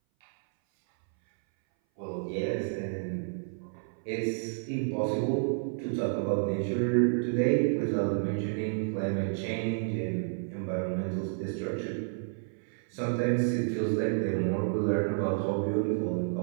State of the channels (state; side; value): silent; left; 58 dB below the other